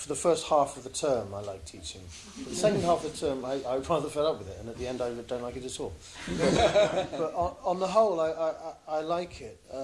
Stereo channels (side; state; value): both; identical; correlation 1.00